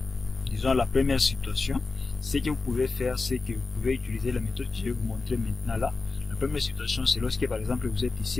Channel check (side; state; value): right; quieter; 3.9 dB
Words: disons la première situation, ce que vous pouvez faire, c'est que vous pouvez utiliser la méthode que je vais vous montrer maintenant là. La première situation, c'est lorsque par exemple vous êtes